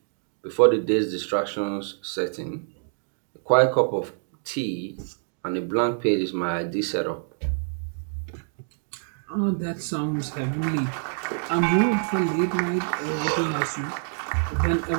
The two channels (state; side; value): silent; left; 61 dB below the other